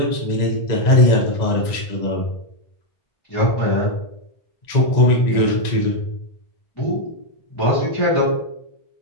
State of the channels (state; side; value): late; right; 1.9 ms